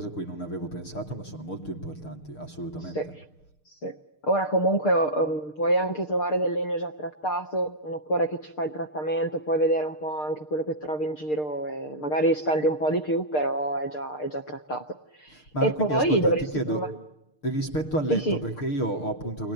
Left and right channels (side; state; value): right; late; 6.6 ms